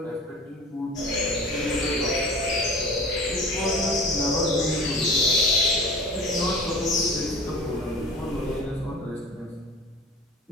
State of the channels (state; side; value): normal; both; correlation 0.40